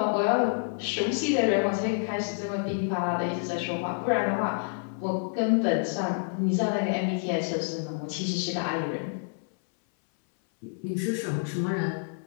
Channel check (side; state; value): right; silent; 59 dB below the other